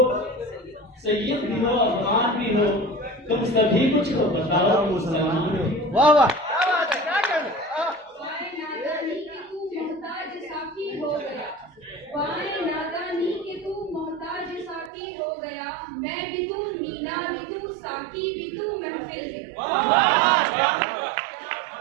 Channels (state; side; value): drops out; left; at 14.9 s